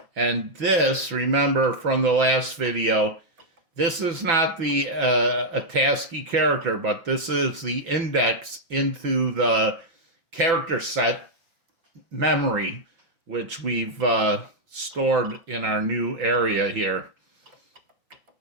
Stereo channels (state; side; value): late; left; 6.0 ms